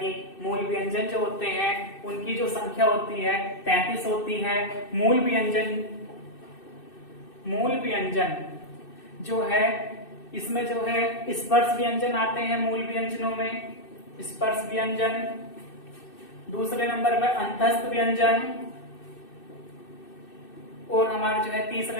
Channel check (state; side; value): late; right; 2.6 ms